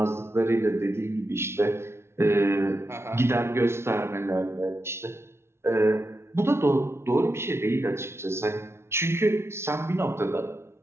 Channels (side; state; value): left; late; 0.12 ms